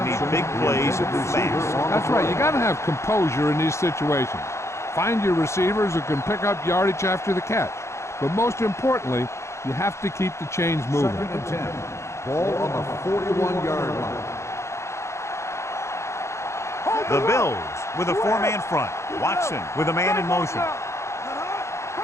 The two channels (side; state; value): right; late; 0.14 ms